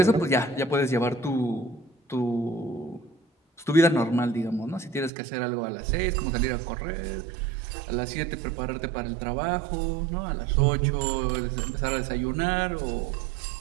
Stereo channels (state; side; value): drops out; left; at 5.1 s